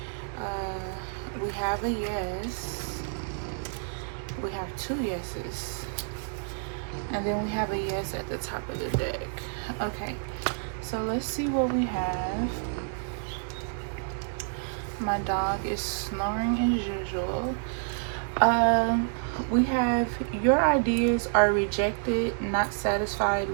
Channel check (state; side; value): silent; left; digital silence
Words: We have a yes. We have two yeses. And then we have a yes at the top of the deck. Okay. So let's see what we have. My dog is snoring as usual. We have your ideas are rejected, not satisfied